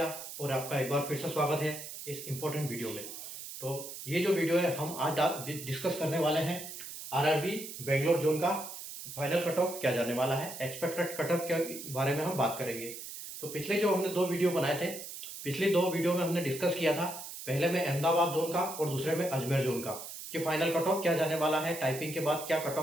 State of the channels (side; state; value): right; noise; hiss, 10 dB below the sound